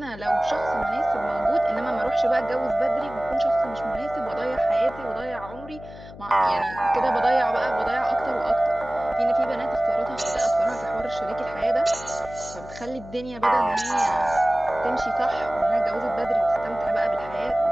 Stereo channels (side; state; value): left; noise; hum, 16 dB below the sound